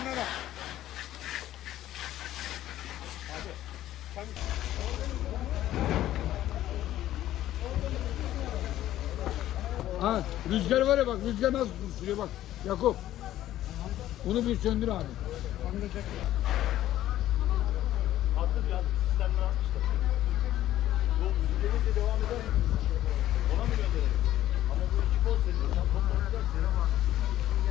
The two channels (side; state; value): right; quieter; 13.4 dB